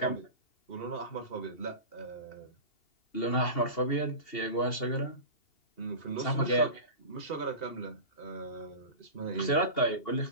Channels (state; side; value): late; right; 2.8 ms